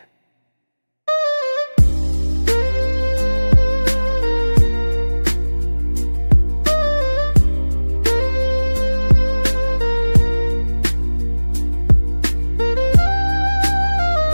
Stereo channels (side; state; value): both; inverted; correlation -1.00